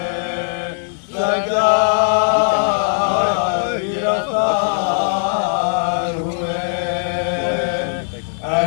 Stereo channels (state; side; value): silent; right; digital silence